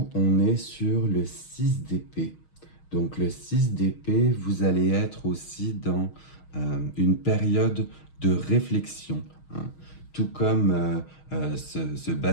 on est sur le 6 d'épée. Donc le 6 d'épée, vous allez être aussi dans une période de réflexion, hein. Tout comme ce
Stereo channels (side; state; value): right; late; 6.4 ms